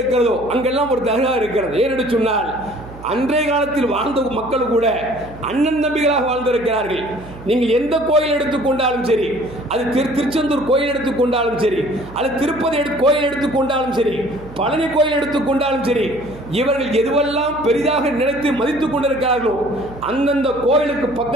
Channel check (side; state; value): right; noise; hum, 17 dB below the sound